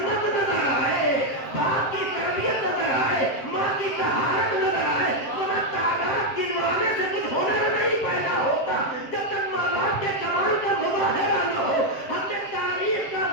نظر آئے، باپ کی تربیت نظر آئے، ماں کی طہارت نظر آئے، ورنہ تعداد گنوانے سے کچھ ہنر نہیں پیدا ہوتا جب تک ماں باپ کے کمال کا مظاہرہ نہ ہو۔ ہم نے تاریخ کا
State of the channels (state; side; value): late; right; 7.4 ms